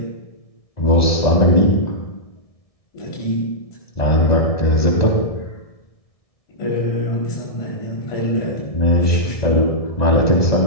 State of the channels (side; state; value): right; late; 1.6 ms